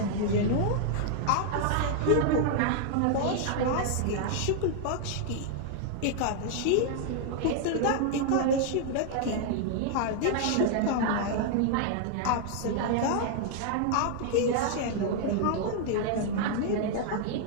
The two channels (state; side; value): different; both; correlation 0.00